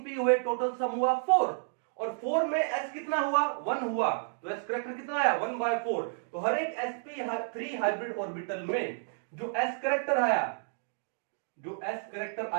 p हुए, टोटल सम हुआ 4। और 4 में s कितना हुआ? 1 हुआ। तो s करेक्टर कितना आया? 1/4। तो हर एक sp3 हाइब्रिड ऑर्बिटल में जो s करेक्टर आया, जो s करेक्टर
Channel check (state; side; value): silent; left; digital silence